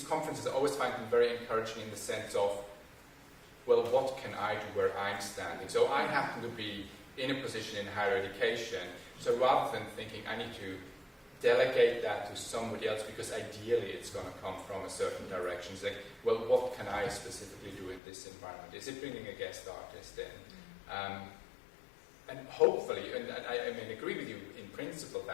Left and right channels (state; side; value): drops out; right; at 18.0 s